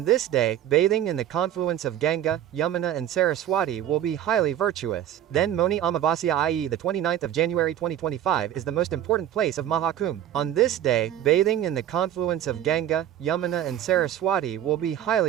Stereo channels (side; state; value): left; quieter; 11.3 dB